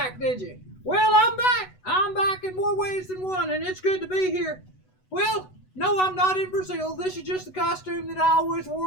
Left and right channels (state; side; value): late; right; 8.0 ms